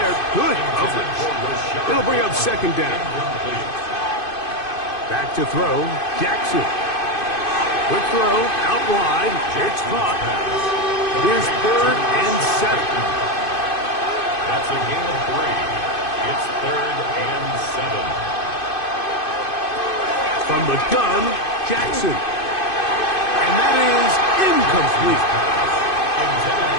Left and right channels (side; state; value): right; late; 2.5 ms